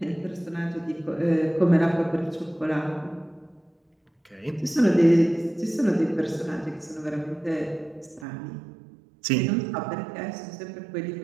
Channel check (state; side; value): drops out; left; at 8.2 s